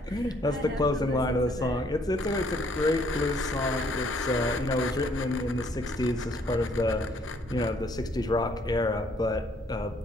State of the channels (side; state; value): both; normal; correlation 0.65